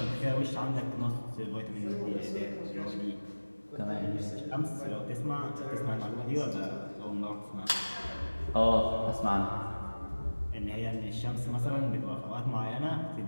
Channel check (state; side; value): inverted; both; correlation -1.00